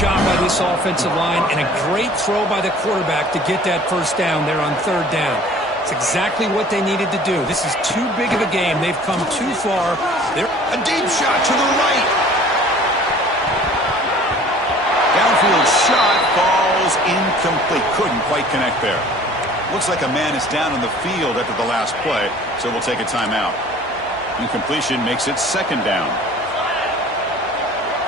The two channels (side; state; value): both; normal; correlation 0.49